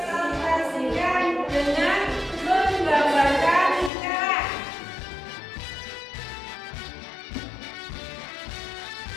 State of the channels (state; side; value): drops out; right; at 3.9 s